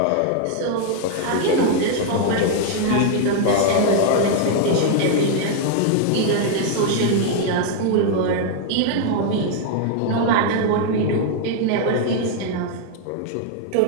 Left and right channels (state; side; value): different; both; correlation 0.00